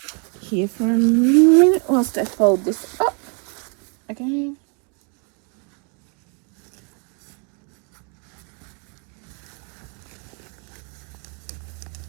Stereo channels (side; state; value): left; quieter; 37.5 dB